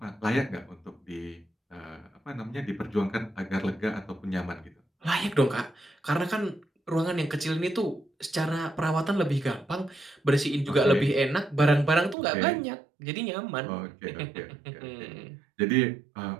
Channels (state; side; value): drops out; left; at 12.2 s